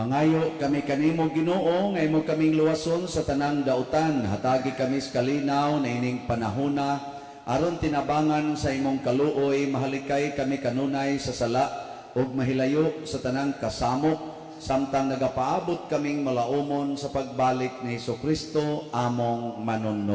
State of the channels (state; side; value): identical; both; correlation 1.00